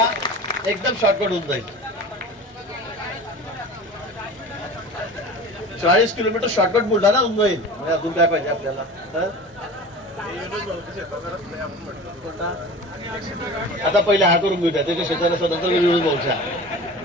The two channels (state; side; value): normal; both; correlation 0.37